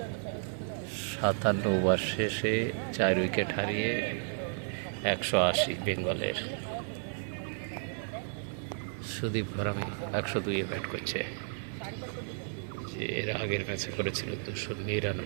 57 ওভার শেষে 4 উইকেট হারিয়ে 180 বেঙ্গলের। সুদীপ ঘরামি 102-এ ব্যাট করছে, যে এর আগের ম্যাচে করেছিল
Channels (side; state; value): left; silent; 56 dB below the other